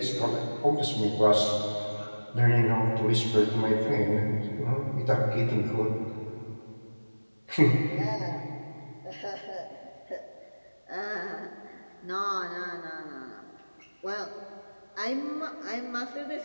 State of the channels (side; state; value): both; inverted; correlation -1.00